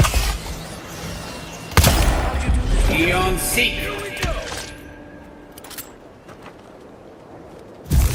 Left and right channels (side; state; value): both; identical; correlation 1.00